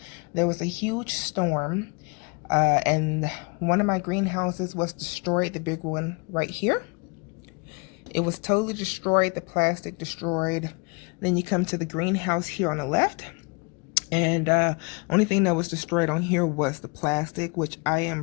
There was a huge storm, and one of my greenhouses was destroyed, the big one right here. It was totally destroyed, the plastic destroyed. Then you come to the greenhouse here on the left, and only thing that was destroyed on here was the plastic, which I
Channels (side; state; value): right; quieter; 32.1 dB